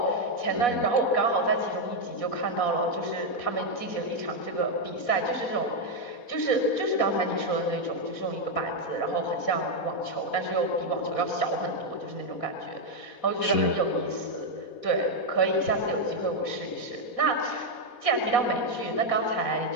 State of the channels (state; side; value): late; right; 4.1 ms